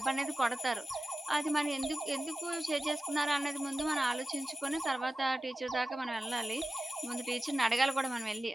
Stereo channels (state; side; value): normal; both; correlation 0.95